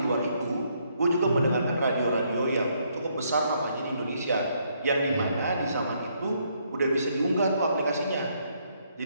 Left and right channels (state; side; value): inverted; both; correlation -0.72